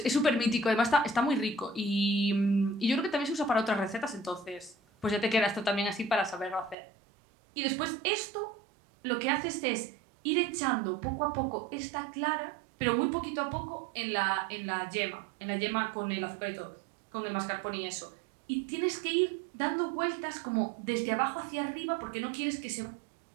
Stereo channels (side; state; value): left; drops out; at 6.8 s